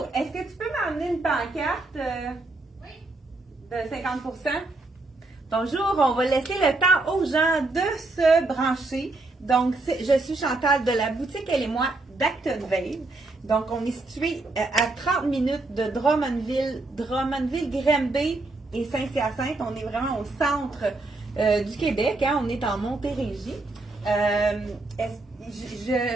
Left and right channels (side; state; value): left; quieter; 3.1 dB